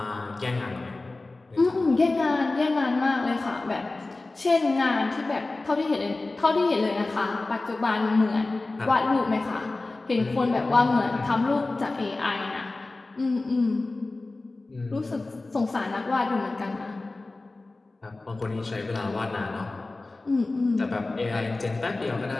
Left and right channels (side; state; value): right; quieter; 3.2 dB